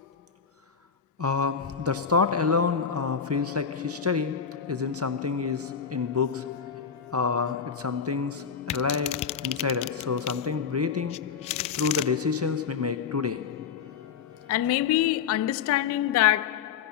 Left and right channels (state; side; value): quieter; right; 6.8 dB